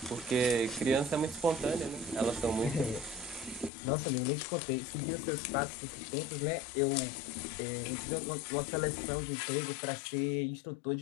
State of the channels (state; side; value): drops out; right; at 3.7 s